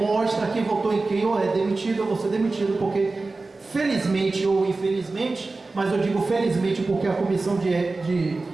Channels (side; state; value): left; quieter; 3.5 dB